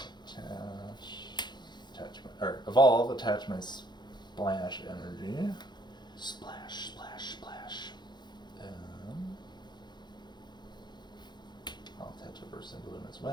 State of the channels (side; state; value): right; late; 0.21 ms